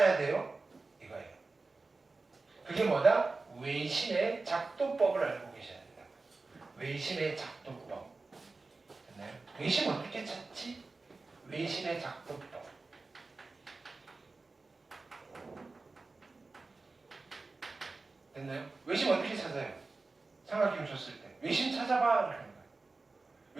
돼요? 이거예요. 그게 뭐다? 외심의 작도법을 알고 계셔야 된다. 외심의 작도법. 됐나요? 외심 어떻게 찾지? 외심의 작도법. 됐나요? 외심 어떻게 찾아요? 삼각형 줬을 때 외심 찾아봐 라는 거예요.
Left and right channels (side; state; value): left; quieter; 3.7 dB